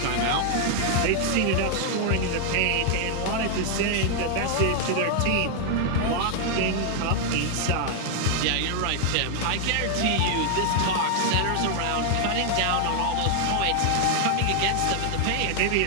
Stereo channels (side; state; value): both; different; correlation 0.00